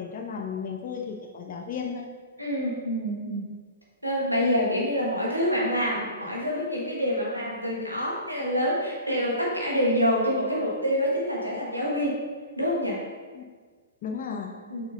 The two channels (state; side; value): inverted; both; correlation -0.39